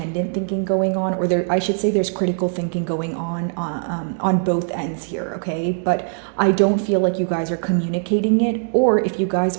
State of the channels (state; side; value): silent; left; digital silence